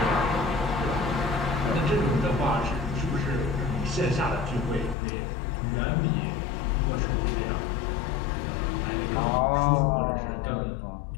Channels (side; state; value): right; drops out; at 5.0 s